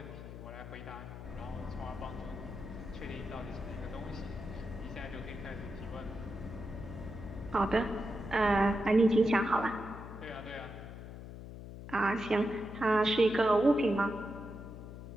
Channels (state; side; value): noise; left; hum, 11 dB below the sound